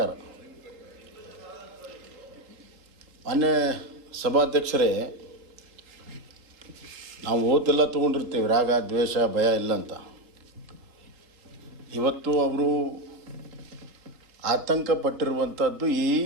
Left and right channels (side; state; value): left; late; 3.7 ms